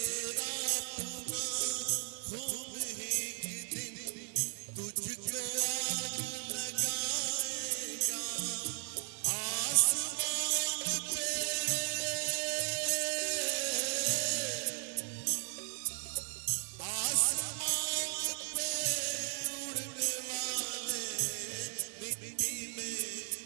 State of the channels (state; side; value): silent; left; digital silence